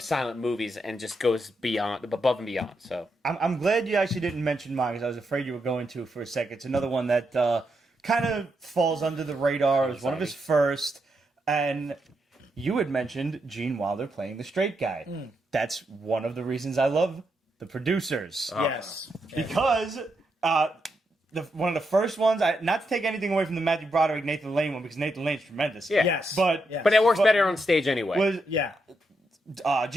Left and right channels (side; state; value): both; normal; correlation 0.82